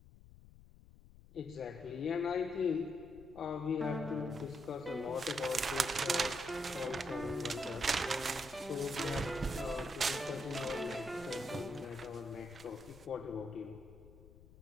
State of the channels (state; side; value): noise; left; rumble, 20 dB below the sound